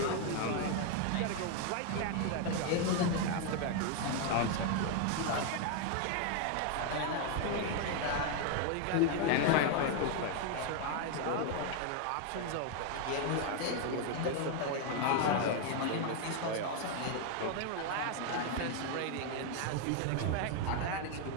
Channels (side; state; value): both; different; correlation 0.01